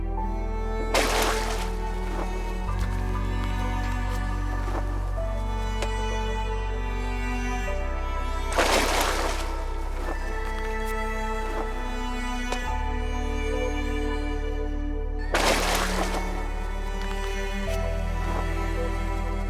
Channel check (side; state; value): both; identical; correlation 1.00